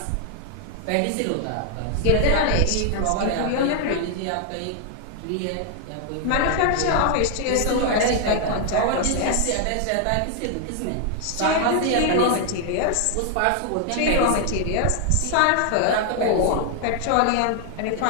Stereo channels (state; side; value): different; both; correlation 0.00